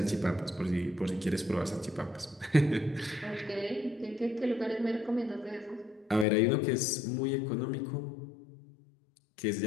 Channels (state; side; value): drops out; right; at 6.2 s